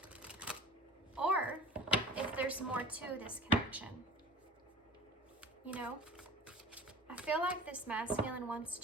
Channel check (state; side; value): normal; both; correlation 0.41